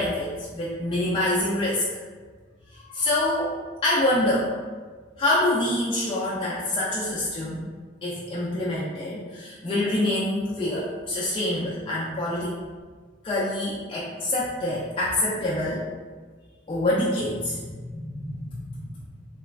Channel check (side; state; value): both; normal; correlation 0.28